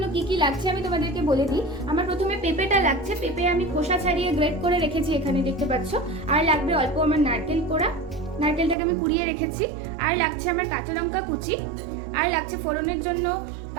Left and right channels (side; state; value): left; drops out; at 8.8 s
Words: কি কি লাগছে আমি তোমাদেরকে বলে দিই। আমার প্রথমে পেঁপেটা লাগছে। পেঁপে আমি খোসা ছাড়িয়ে গ্রেট করে রেখেছি, এখানে দেখতে পাচ্ছ। আর লাগবে অল্প আমার নারকেল কোড়া, নারকেলটাকে আমি কুড়িয়ে রেখেছি। আর লাগছে আমার কাঁচা লঙ্কা কুচি, আর লাগছে ফোড়নের জন্য